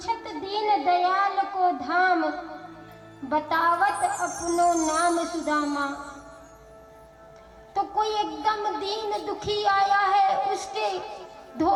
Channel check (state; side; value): identical; both; correlation 1.00